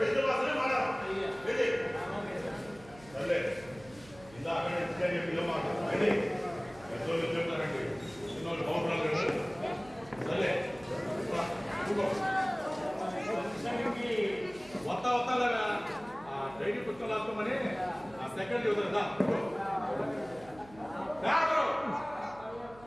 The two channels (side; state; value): right; noise; hum, 22 dB below the sound